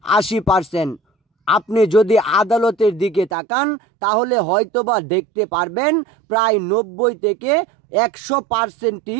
৮০%। আপনি যদি আদালতের দিকে তাকান তাহলে হয়তোবা দেখতে পারবেন প্রায় ৯০ থেকে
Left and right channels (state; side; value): drops out; left; at 3.3 s